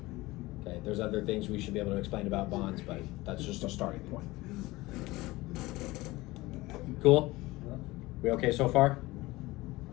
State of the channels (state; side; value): quieter; right; 20.0 dB